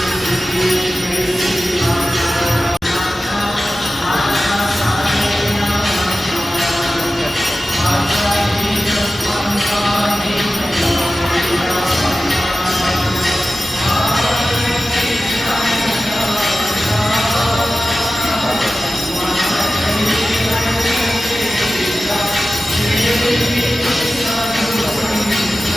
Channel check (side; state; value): both; normal; correlation 0.95